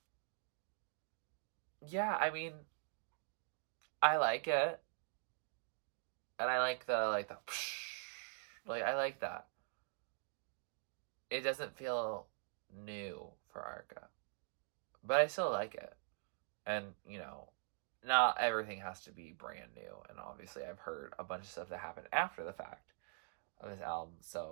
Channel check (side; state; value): left; silent; digital silence